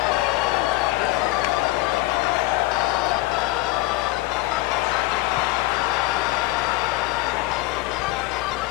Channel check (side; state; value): right; quieter; 19.1 dB